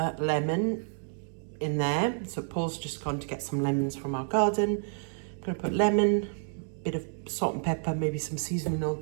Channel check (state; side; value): silent; left; 58 dB below the other